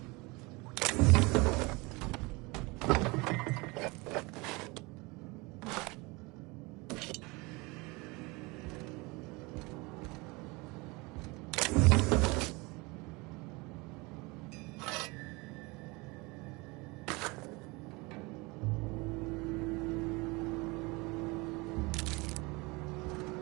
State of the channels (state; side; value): quieter; left; 25.2 dB